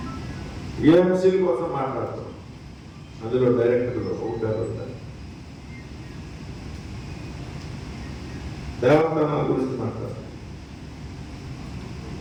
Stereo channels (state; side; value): identical; both; correlation 1.00